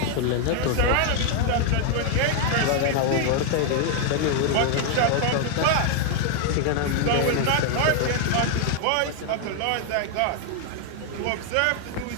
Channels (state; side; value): different; both; correlation 0.00